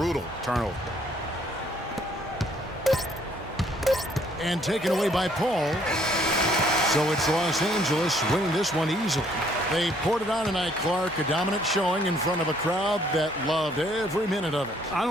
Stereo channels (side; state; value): both; normal; correlation 0.64